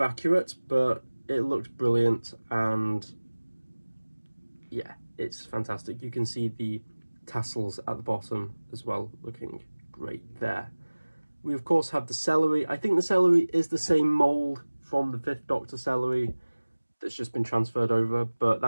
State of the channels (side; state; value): both; inverted; correlation -1.00